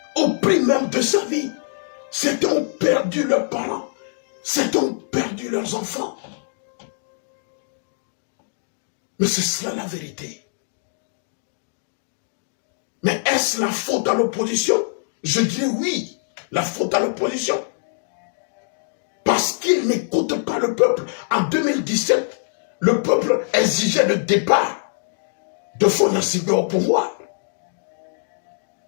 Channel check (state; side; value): silent; right; digital silence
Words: Au prix même de sa vie. Certains ont perdu leurs parents. Certains ont perdu leurs enfants. Mais c'est cela la vérité. Mais est-ce la faute à l'opposition? Je dirais oui, la faute à l'opposition. Parce qu'ils n'écoutent pas le peuple. En 2017, le peuple exigeait le départ de Fonasibé au pouvoir.